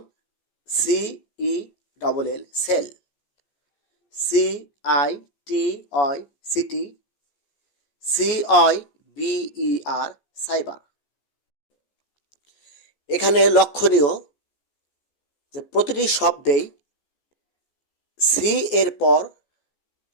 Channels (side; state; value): right; late; 14 ms